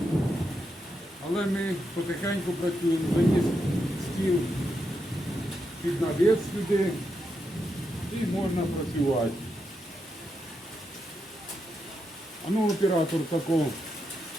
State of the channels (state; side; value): normal; both; correlation 0.84